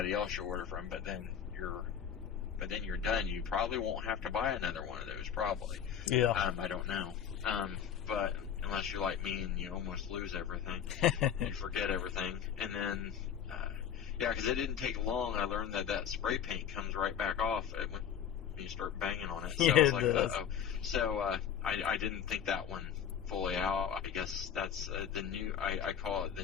else you order from, but then you're done. You probably won't have to buy another one of those, probably. Yeah. I don't know. But unless you're like me and you almost lose everything, you forget everything. And then, yeah, because it didn't take long. I learned that spray paint comes right back off when you start banging on it. So I was like, uh-oh. So I didn't think that one fully out. I guess that's the new, I call it the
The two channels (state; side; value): quieter; right; 8.5 dB